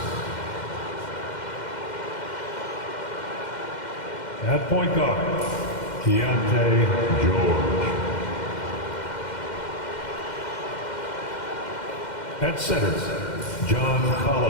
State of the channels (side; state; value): right; late; 2.1 ms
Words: At point guard, Keontae George. At center, John